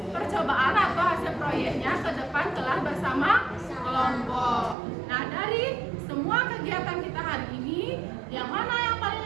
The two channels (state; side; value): drops out; left; at 4.8 s